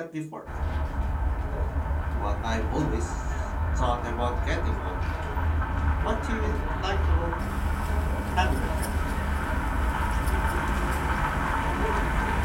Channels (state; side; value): identical; both; correlation 1.00